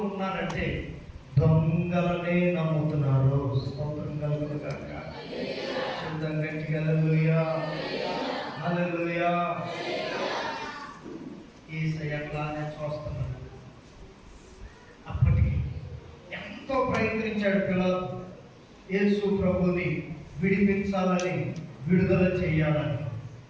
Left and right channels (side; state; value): both; identical; correlation 1.00